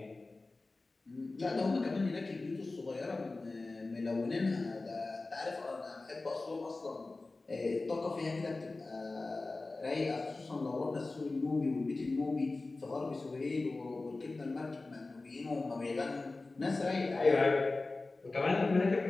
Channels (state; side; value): quieter; right; 3.4 dB